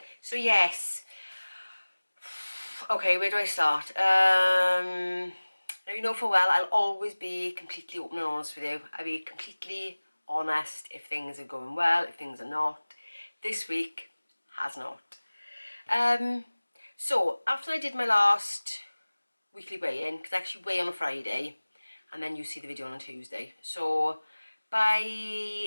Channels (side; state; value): both; inverted; correlation -1.00